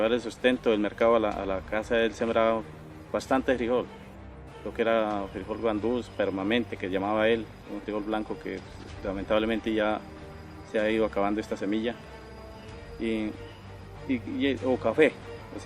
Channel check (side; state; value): both; identical; correlation 1.00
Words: el sustento del mercado a la casa, él sembraba bastante frijol. Lo que era frijol guandús, permanente, que llamaba él, un frijol blanco que lamentablemente ya se ha ido acabando esta semilla. O café, o